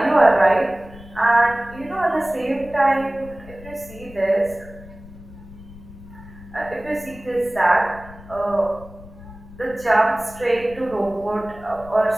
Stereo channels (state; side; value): noise; left; rumble, 18 dB below the sound